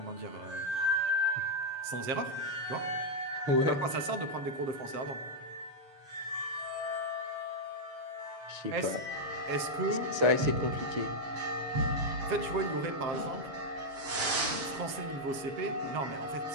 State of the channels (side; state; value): left; late; 7.5 ms